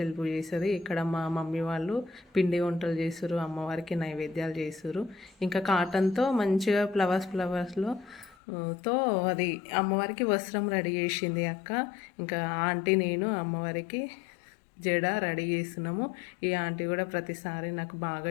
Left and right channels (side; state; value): right; drops out; at 8.3 s